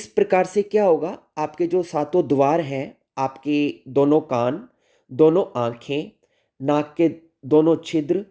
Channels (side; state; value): both; identical; correlation 1.00